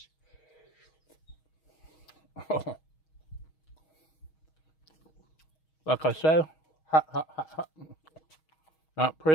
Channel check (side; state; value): right; late; 6.3 ms